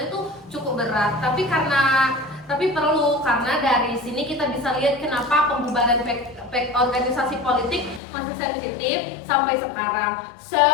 itu cukup berat, tapi karena tapi perlu karena dari sini kita bisa lihat kenapa pembubaran organisasi politik masih sensitif sampai sekarang. So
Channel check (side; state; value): right; drops out; at 8.0 s